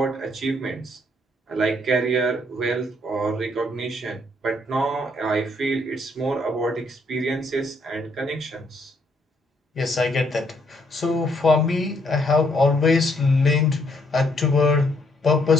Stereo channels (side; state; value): both; normal; correlation 0.70